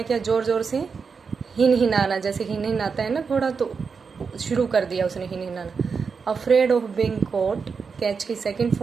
किया, ज़ोर ज़ोर से हिन हिनाना, जैसे हिन हिनाता है ना घोड़ा, तो शुरू कर दिया उसने हिन हिनाना। Afraid of being caught, catch की सेकंड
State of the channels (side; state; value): left; quieter; 5.5 dB